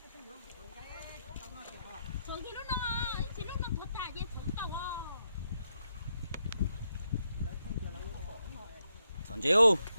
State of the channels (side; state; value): both; inverted; correlation -0.81